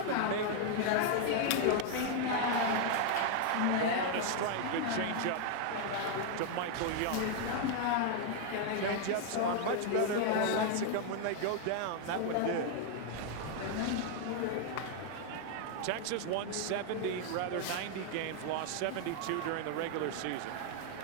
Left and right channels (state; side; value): different; both; correlation 0.00